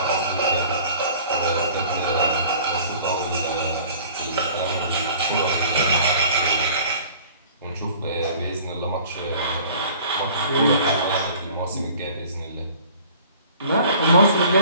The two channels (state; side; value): inverted; both; correlation -0.48